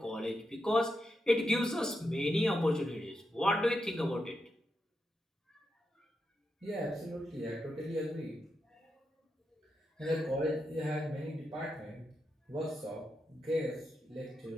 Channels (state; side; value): normal; both; correlation 0.86